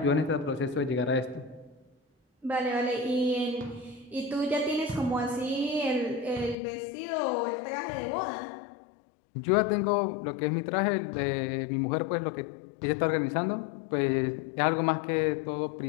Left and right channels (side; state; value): right; drops out; at 6.6 s